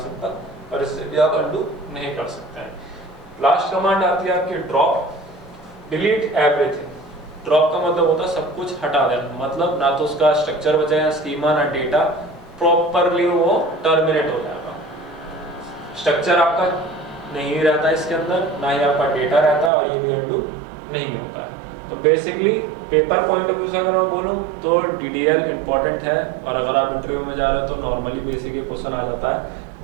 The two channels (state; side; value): drops out; left; at 19.7 s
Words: और इससे भी आप अनडू नहीं कर सकते हैं। लास्ट कमांड आती है आपकी ड्रॉप। Delete everything. ड्रॉप का मतलब होता है सब कुछ हटा देना, मतलब ना तो उसका स्ट्रक्चर बचेगा, स्कीमा, ना डेटा, प्रॉपरली वो टर्मिनेट हो जाएगा। स्ट्रक्चर आपका नहीं रहता इसके अंदर, ना ही आपका डेटा रहता, और ये भी अनडू नहीं होता है। तो basically paper point of view से अगर मैं बोलूँ तो DDL इंपॉर्टेंट है, और अगर आप इंटरव्यू में जा रहे हो तो नॉर्मली बेसिक क्वेश्चन आ जाता है।